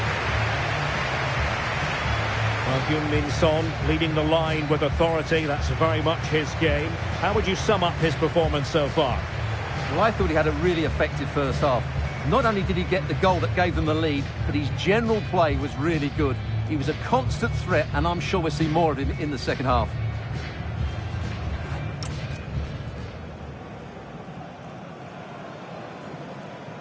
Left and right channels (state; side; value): identical; both; correlation 1.00